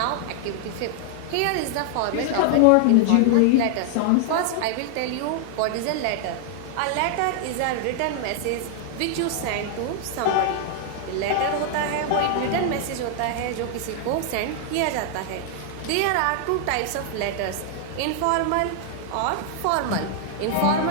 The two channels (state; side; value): different; both; correlation 0.00